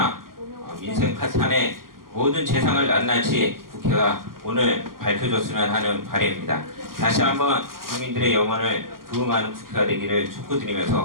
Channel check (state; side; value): late; left; 0.92 ms